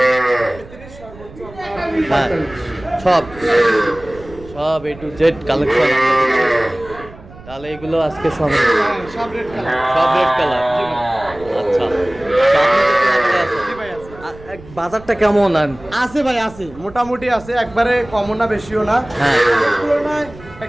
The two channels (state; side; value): noise; right; rumble, 19 dB below the sound